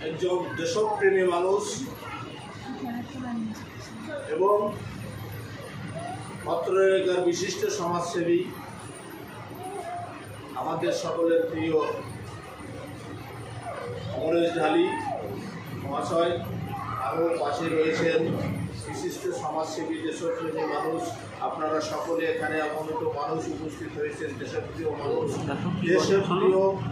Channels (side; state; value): both; identical; correlation 1.00